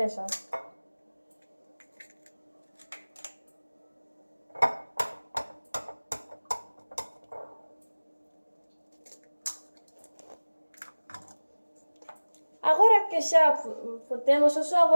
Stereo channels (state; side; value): inverted; both; correlation -1.00